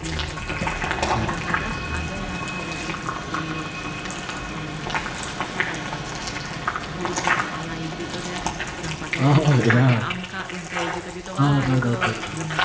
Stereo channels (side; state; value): both; identical; correlation 1.00